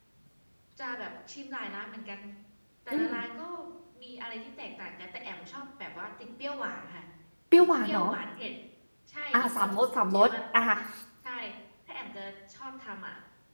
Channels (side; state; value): both; inverted; correlation -1.00